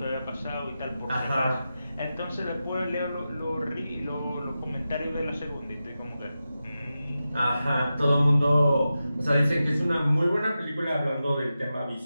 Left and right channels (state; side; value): inverted; both; correlation -0.92